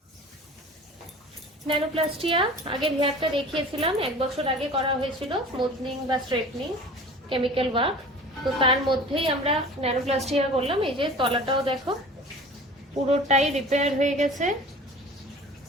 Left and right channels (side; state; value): both; normal; correlation 0.42